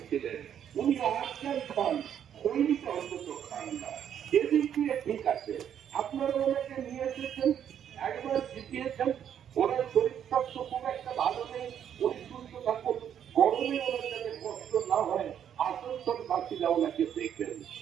ছিলেন। উনি আজকাল খান, সৈনিক অন্তত খান না। এদিক দিয়ে ঠিক আছে। আপনারা ওনাকে নিয়ে এসেছেন, একবার জিতিয়েছেন। ওনার শরীর স্বাস্থ্য খুব একটা ভালো নেই, উনি সুস্থ থাকুন, গরমে ওনার যাতে কষ্ট না হয়, আসানসোল বাসীরা ওনাকে দেখবেন।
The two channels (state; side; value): quieter; left; 9.2 dB